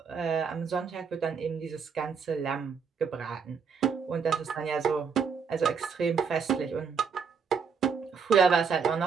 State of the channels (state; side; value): quieter; left; 6.0 dB